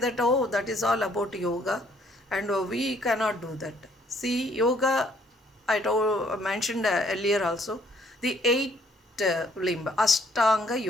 oh, that is all about yoga, and we cannot do that. See, yoga, I mentioned earlier also, the 8 limb, Ashtanga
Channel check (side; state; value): both; normal; correlation 0.64